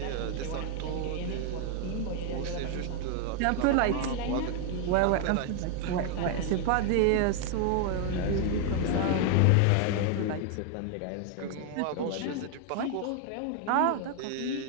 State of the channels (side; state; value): both; different; correlation 0.00